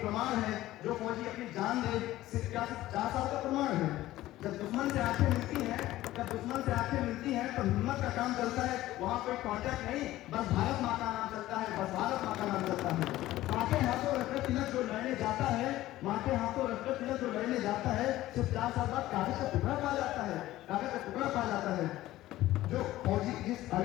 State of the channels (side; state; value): right; quieter; 15.6 dB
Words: प्रमाण है। जो फौजी अपनी जान दे सिर्फ 4 साल का प्रमाण है। जब दुश्मन से आंखें मिलती हैं तो हिम्मत का काम चलता है। वहाँ कोई कॉन्ट्रैक्ट नहीं, बस भारत माँ का नाम चलता है, बस भारत माँ का नाम चलता है। माँ के हाथों रक्त तिलक जो लड़ने जाता है, माँ के हाथों रक्त तिलक जो लड़ने जाता है, सिर्फ 4 साल बाद कागज का टुकड़ा पा जाता है, कागज का टुकड़ा पा जाता है। जो फौजी